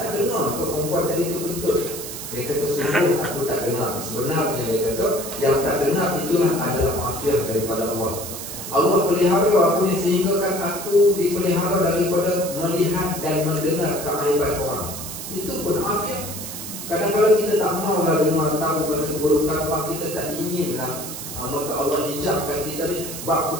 dengar ke perempuan tadi tu kentut? Dia kata sungguh aku tak dengar. Sebenarnya dia kata yang tak dengar itulah adalah afiat daripada Allah. Allah pelihara aku ni sehingga kan aku dipelihara daripada melihat dan mendengar keaiban orang. Itu pun afiat. Kadang-kadang kita tak maulah dengar tahu pasal keburukan orang, kita tak inginlah. Maka Allah hijabkan kita ni, bab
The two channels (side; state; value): right; noise; hiss, 8 dB below the sound